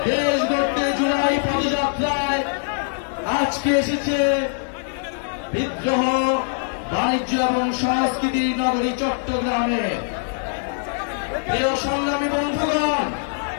দেশ গড়তে জুলাই পদযাত্রায় আজকে এসেছে বিদ্রোহ বাণিজ্য এবং সংস্কৃতি নগরী চট্টগ্রামে। প্রিয় সংগ্রামী বন্ধুগণ,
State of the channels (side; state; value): right; silent; digital silence